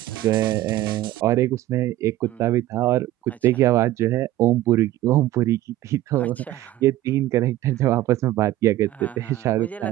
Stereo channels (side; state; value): left; quieter; 14.9 dB